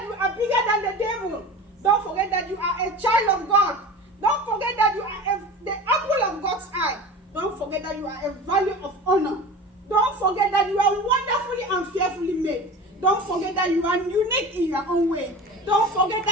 you are bigger than the devil. Don't forget that you are a child of God. Don't forget that you are the apple of God's eye. Don't forget that you are a value of honor. Don't forget that you are wonderfully and fearfully made. Don't forget that you are unique in your own way. Don't forget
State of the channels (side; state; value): both; normal; correlation 0.34